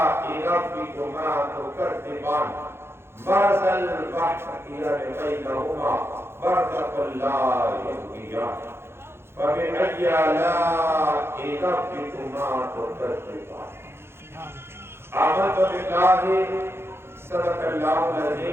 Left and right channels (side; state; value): left; late; 0.12 ms